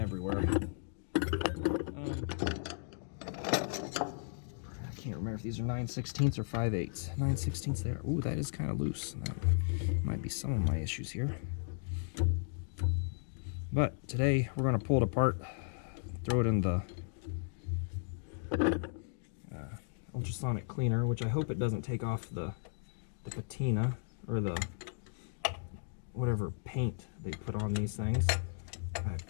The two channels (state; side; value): silent; right; digital silence